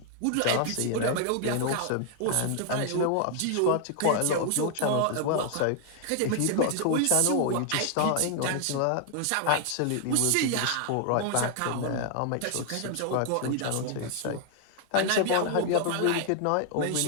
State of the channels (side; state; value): both; different; correlation 0.00